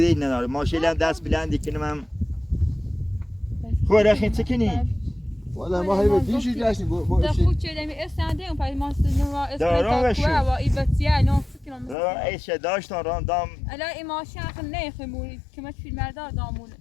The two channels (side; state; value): right; drops out; at 12.0 s